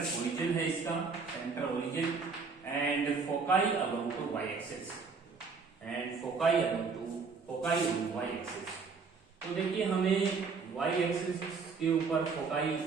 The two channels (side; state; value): left; quieter; 4.9 dB